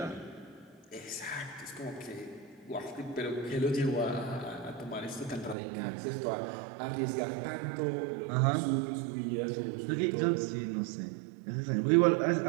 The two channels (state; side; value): drops out; left; at 5.6 s